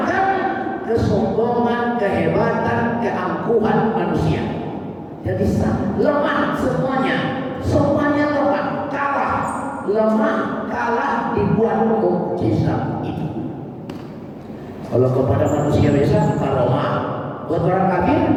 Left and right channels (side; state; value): both; identical; correlation 1.00